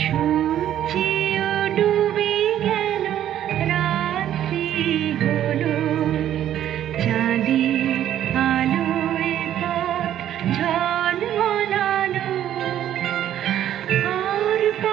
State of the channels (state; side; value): quieter; left; 11.3 dB